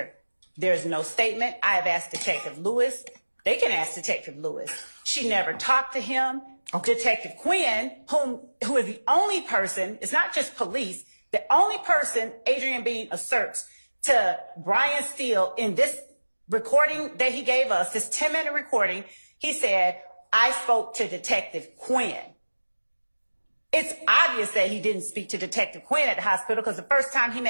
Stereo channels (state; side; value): inverted; both; correlation -1.00